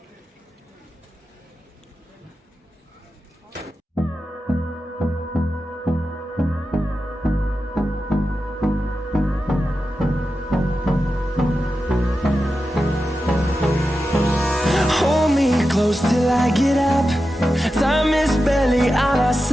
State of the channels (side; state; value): both; normal; correlation 0.91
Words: Close till I get up. Time is barely on our